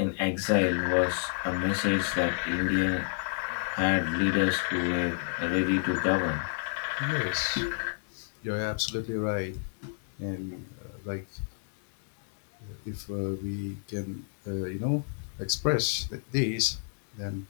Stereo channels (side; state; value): right; silent; digital silence